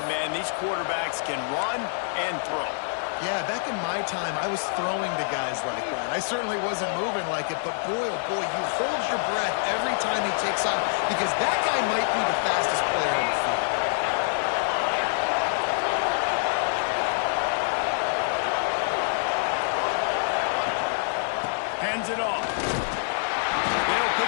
man. These quarterbacks can run and throw. Yeah, back in my time, I was throwing to guys like that. I certainly wasn't moving like it, but boy, oh boy, you hold your breath every time he takes off because that guy might be the fastest player on the field. Hands it off. They'll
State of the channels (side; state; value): right; silent; digital silence